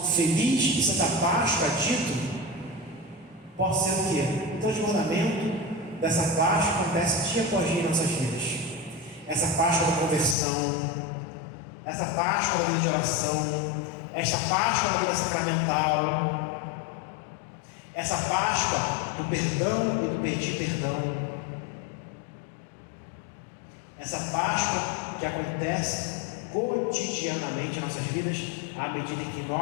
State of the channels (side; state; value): right; drops out; at 10.4 s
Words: feliz e Santa Páscoa dito possa ser o quê? O transbordamento dessa Páscoa acontece dia após dia em nossas vidas. Essa Páscoa da conversão, essa Páscoa da vida de oração, esta Páscoa da vida sacramental, essa Páscoa do perdão e do pedir perdão, essa Páscoa que acontece cotidianamente em nossas vidas, à medida que